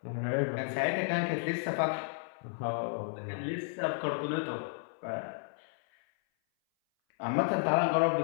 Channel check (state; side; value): silent; right; 56 dB below the other